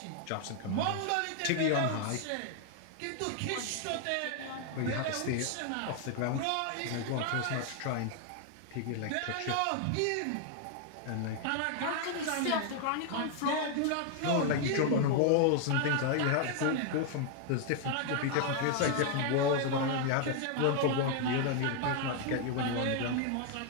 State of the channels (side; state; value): both; different; correlation 0.00